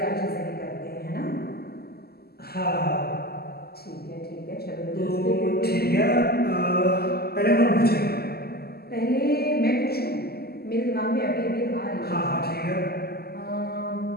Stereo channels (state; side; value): late; right; 0.46 ms